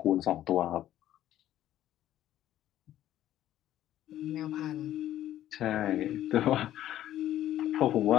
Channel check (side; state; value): right; quieter; 12.6 dB